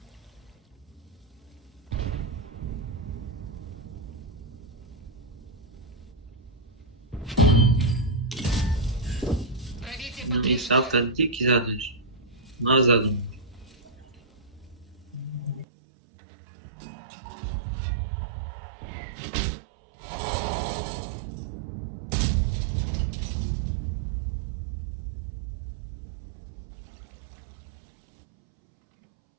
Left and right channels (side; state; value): left; drops out; at 15.7 s